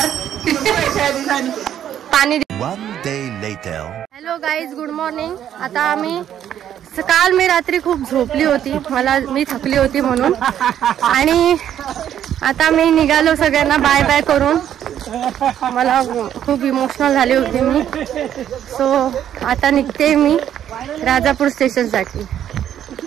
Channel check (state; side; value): quieter; left; 10.3 dB